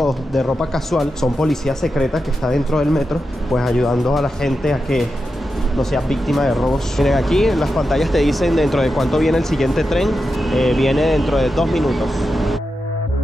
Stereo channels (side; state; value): both; normal; correlation 0.89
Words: de ropa casual, son policías secretas que están dentro del metro, pues ayudando a la gente a que no seas víctima de robos. Miren, aquí en las pantallas te dicen dentro de cuánto viene el siguiente tren. Viene dentro de 2 minutos.